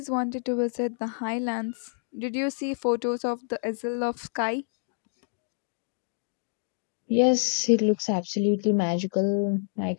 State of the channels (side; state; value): right; silent; digital silence